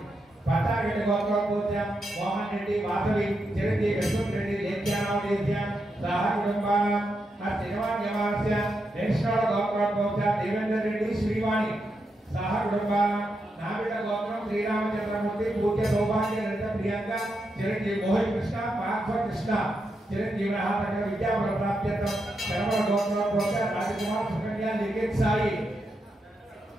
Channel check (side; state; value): both; normal; correlation 0.84